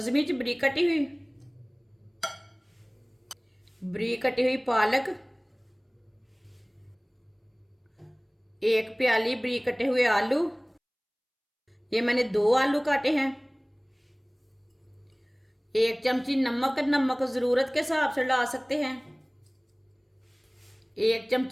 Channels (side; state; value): both; identical; correlation 1.00